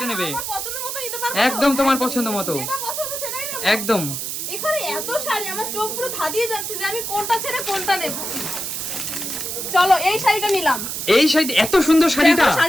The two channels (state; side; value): noise; right; hiss, 4 dB below the sound